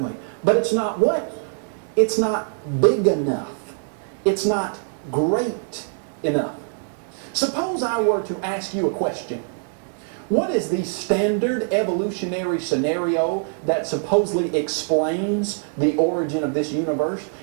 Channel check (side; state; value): left; silent; digital silence